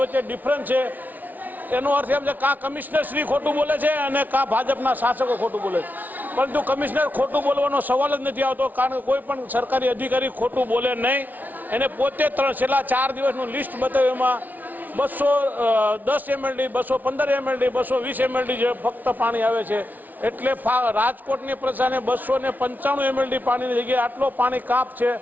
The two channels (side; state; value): left; late; 0.080 ms